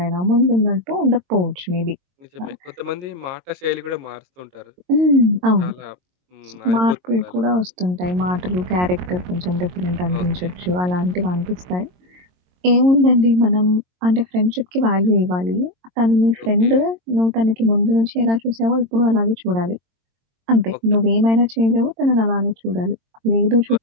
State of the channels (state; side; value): late; left; 22 ms